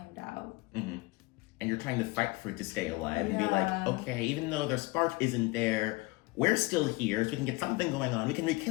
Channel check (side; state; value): right; quieter; 23.2 dB